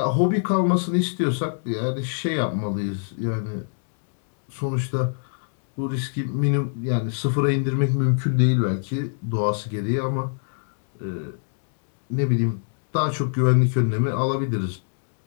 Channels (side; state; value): right; silent; digital silence